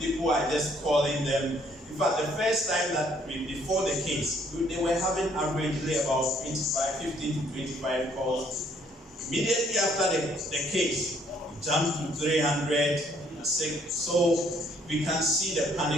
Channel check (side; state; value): both; normal; correlation 0.65